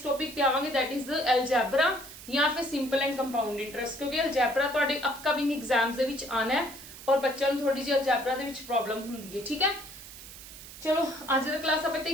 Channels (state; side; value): noise; right; hiss, 15 dB below the sound